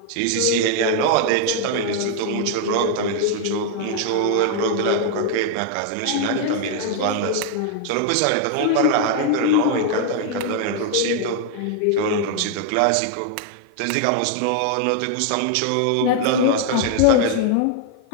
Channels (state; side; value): different; both; correlation 0.00